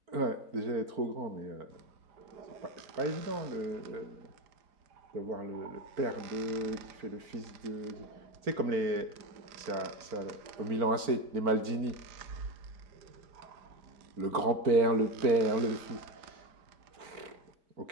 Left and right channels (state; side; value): late; left; 4.4 ms